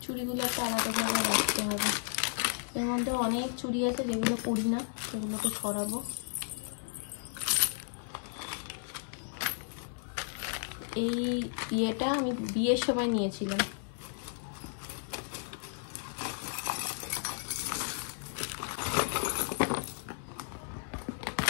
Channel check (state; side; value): silent; right; 55 dB below the other